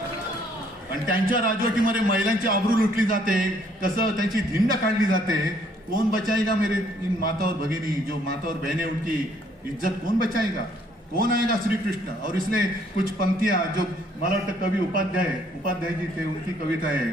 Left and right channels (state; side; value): normal; both; correlation 0.65